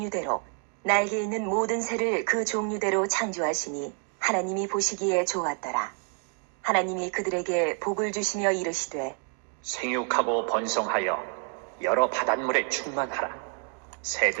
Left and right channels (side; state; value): left; quieter; 39.2 dB